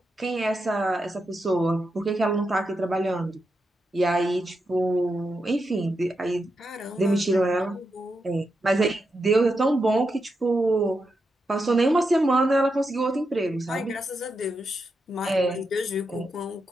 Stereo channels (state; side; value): normal; both; correlation 0.86